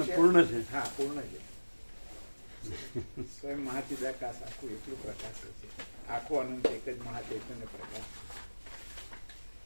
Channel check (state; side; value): inverted; both; correlation -1.00